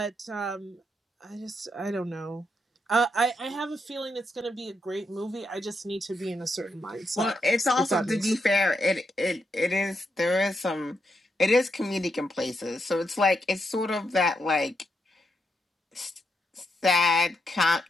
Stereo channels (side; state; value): both; normal; correlation 0.81